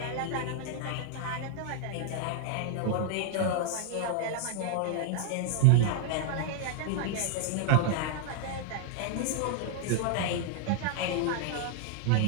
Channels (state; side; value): different; both; correlation -0.01